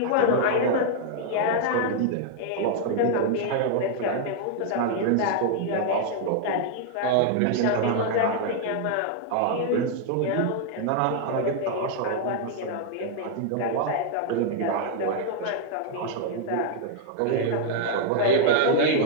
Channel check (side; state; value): both; different; correlation -0.01